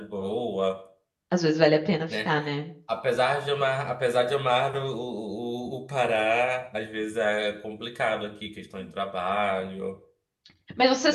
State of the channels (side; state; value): both; identical; correlation 1.00